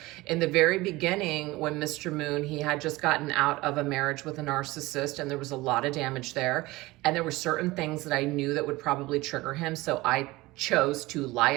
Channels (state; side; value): quieter; left; 20.2 dB